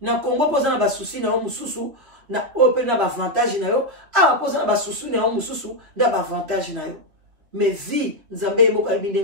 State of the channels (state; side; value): late; left; 3.3 ms